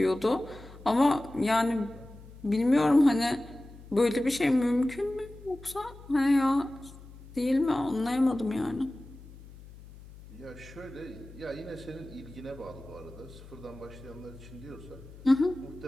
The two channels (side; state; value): left; noise; hum, 18 dB below the sound